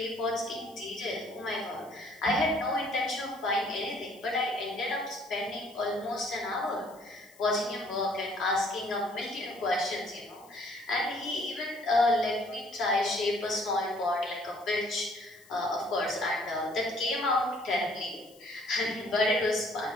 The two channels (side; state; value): left; noise; hiss, 25 dB below the sound